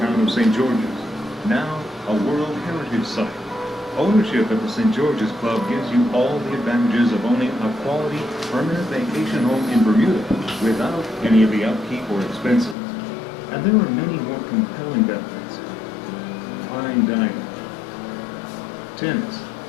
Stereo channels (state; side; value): drops out; right; at 12.8 s